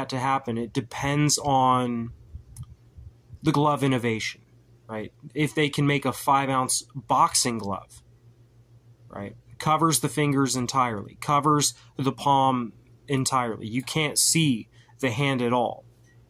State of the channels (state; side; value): identical; both; correlation 1.00